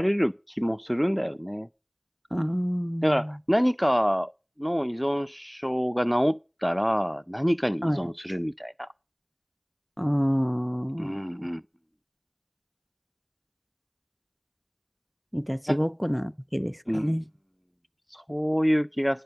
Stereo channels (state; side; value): identical; both; correlation 1.00